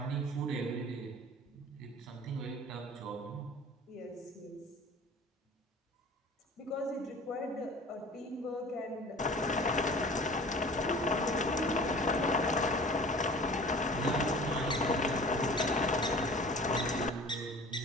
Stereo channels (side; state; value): both; normal; correlation 0.43